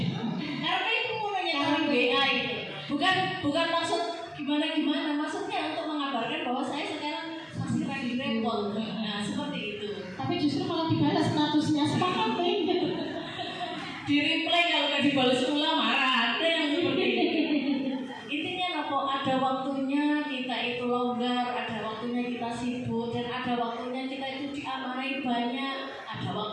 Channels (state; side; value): identical; both; correlation 1.00